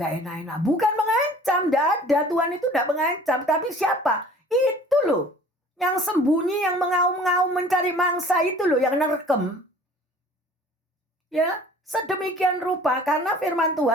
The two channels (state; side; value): normal; both; correlation 0.49